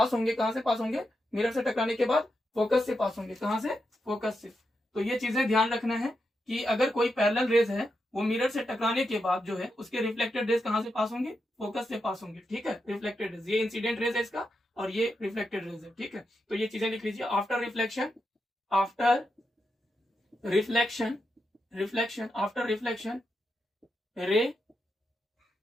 होंगे कहां से पास होंगे, मिरर से टकराने के बाद फोकस से पास होंगे। कहां से, फोकस से। तो ये चीजें ध्यान रखना है कि अगर कोई पैरेलल रेज है वो मिरर से टकराने के बाद जो है उसके रिफ्लेक्टेड रेज कहां से पास होंगे, फोकस से पास होंगे, ठीक है। रिफ्लेक्टेड रेज, ये इंसिडेंट रेज है इसका और ये रिफ्लेक्टेड रेज है, ठीक है। तो ये चीजें लिख लीजिए। आफ्टर रिफ्लेक्शन, आफ्टर रिफ्लेक्शन रे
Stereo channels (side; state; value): both; normal; correlation 0.85